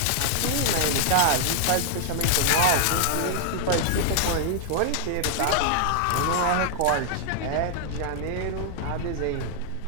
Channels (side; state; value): both; different; correlation 0.00